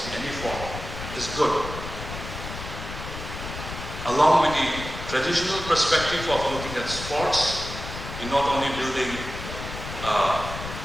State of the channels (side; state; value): left; noise; rumble, 9 dB below the sound